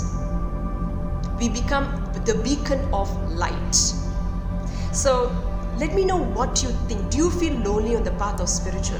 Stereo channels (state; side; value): identical; both; correlation 1.00